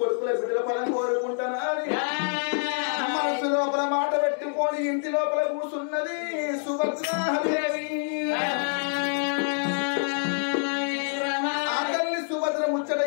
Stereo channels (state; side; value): silent; right; digital silence